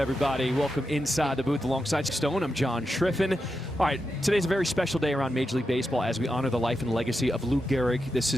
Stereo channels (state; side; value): normal; both; correlation 0.88